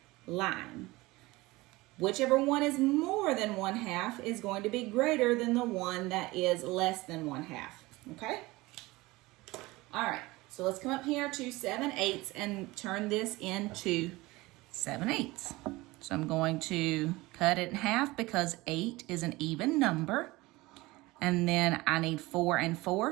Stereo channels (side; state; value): left; quieter; 20.9 dB